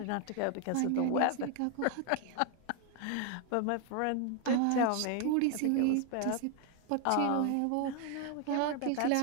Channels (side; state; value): both; different; correlation 0.00